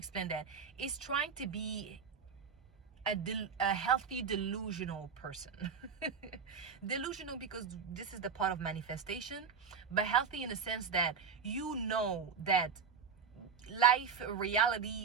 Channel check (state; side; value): quieter; left; 6.3 dB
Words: that? It's trying to be a healthy delusional person. Delusional because this is the part of manifestation, but healthy in the sense that you know that life,